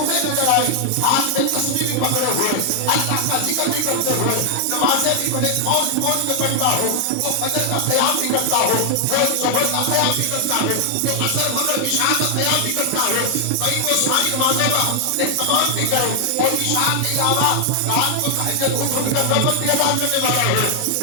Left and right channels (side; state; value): both; different; correlation 0.00